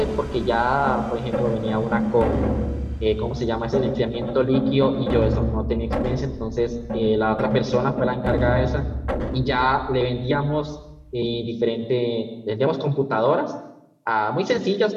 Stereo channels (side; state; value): both; identical; correlation 1.00